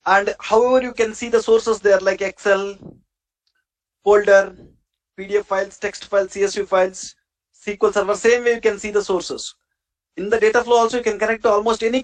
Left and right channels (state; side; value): identical; both; correlation 1.00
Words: And however you can see the sources there like Excel, folder, PDF files, text files, CSV files, SQL Server. Same way you can see the sources. In the data flow also you can connect to almost any